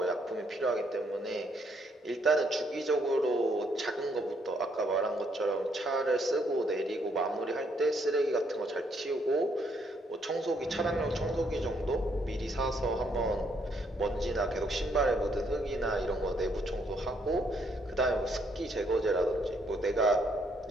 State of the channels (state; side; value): normal; both; correlation 0.71